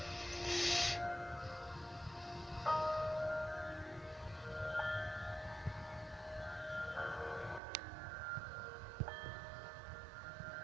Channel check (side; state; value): left; drops out; at 7.6 s